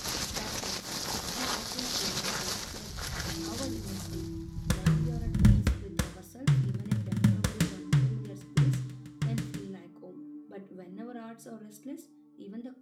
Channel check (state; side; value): identical; both; correlation 1.00